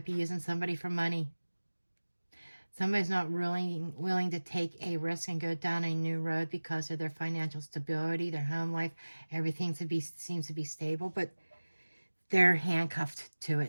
be using somebody for money. Somebody's not really willing to take a risk and go down a new road because of their financial stability, their home life, everything seems to be stable, but they're handcuffed to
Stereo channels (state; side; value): inverted; both; correlation -1.00